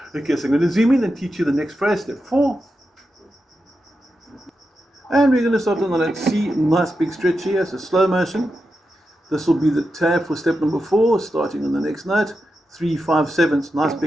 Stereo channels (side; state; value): both; normal; correlation 0.89